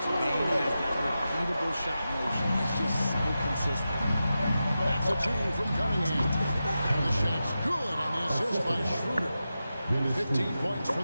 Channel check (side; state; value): both; inverted; correlation -0.91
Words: Bain has that repeatable shot motion. It's just so consistent. That's a 2 from Cunningham. And the shot's good on the assist by Schroeder. 15 points for